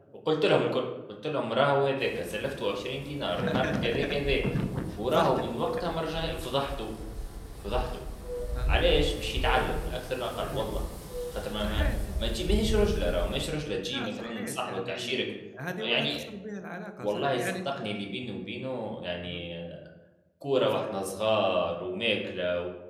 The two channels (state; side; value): identical; both; correlation 1.00